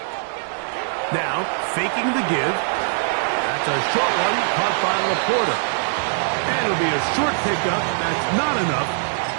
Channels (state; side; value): silent; left; digital silence